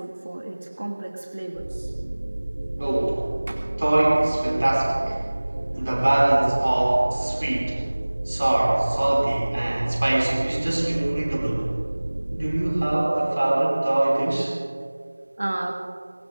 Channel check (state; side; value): inverted; both; correlation -1.00